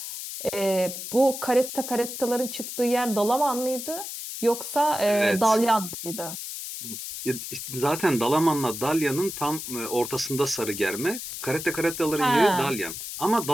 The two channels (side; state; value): left; noise; hiss, 8 dB below the sound